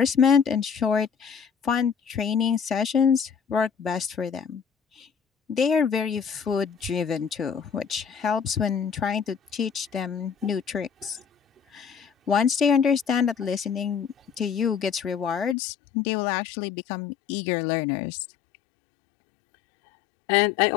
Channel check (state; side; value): drops out; right; at 15.6 s